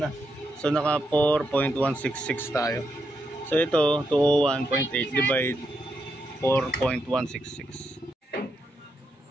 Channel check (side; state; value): both; normal; correlation 0.82